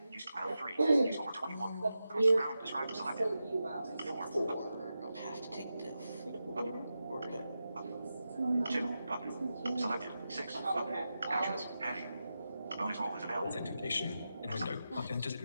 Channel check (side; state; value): both; inverted; correlation -0.91